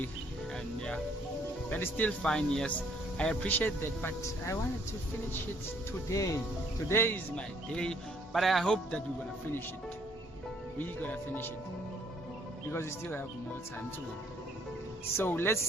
And yeah, that is still fine. Yes, I appreciate that, but I wanted to finish it today. Today is my day, but I hope that we're gonna finish it. We're gonna finish it because we still have more time to go. So let's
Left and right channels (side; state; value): both; normal; correlation 0.64